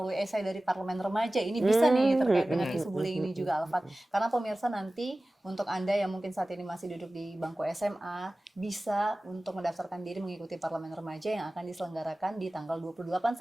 esai dari Parlemen Remaja, ini bisa nih terkait dengan isu bullying ini juga, Alfat. Karena pemirsa, nanti untuk Anda yang mungkin saat ini masih duduk di bangku SMA, bisa untuk mendaftarkan diri mengikuti Parlemen Remaja yang akan diselenggarakan di tanggal 28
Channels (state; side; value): normal; both; correlation 0.97